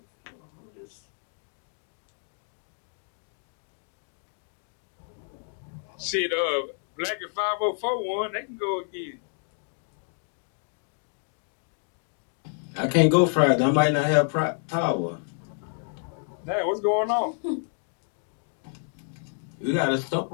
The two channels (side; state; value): right; silent; 59 dB below the other